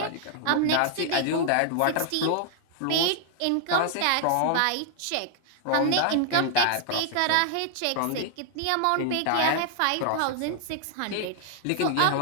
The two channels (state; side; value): different; both; correlation 0.00